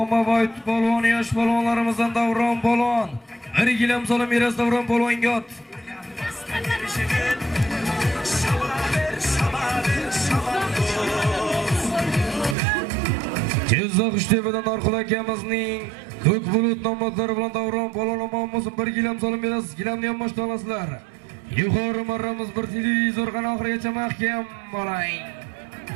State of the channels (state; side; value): drops out; left; at 12.6 s